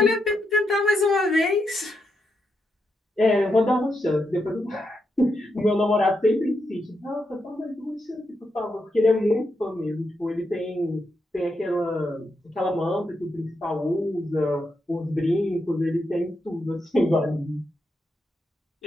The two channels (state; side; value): normal; both; correlation 0.83